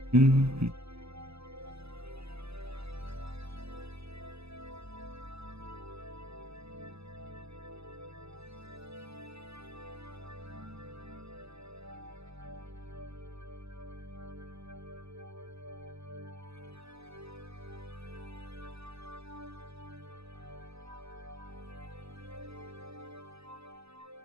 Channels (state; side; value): late; left; 0.79 ms